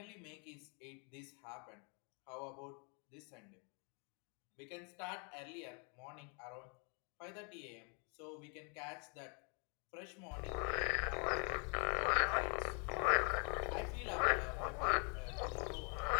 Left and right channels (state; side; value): quieter; right; 35.9 dB